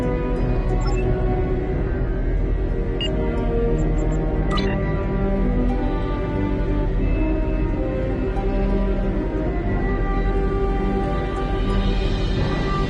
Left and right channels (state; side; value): identical; both; correlation 1.00